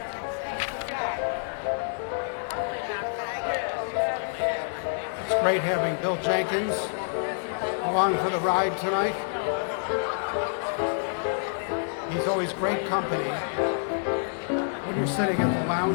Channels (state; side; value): silent; right; digital silence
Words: It's great having Bill Jenkins along for the ride tonight. He's always great company. When you're sitting at the